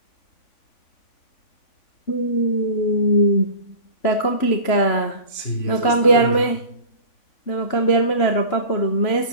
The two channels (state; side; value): late; right; 3.5 ms